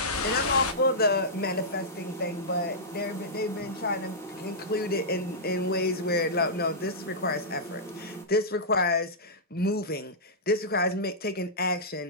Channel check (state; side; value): normal; both; correlation -0.13